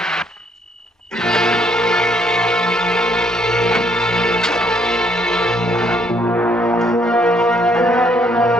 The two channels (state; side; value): normal; both; correlation 0.68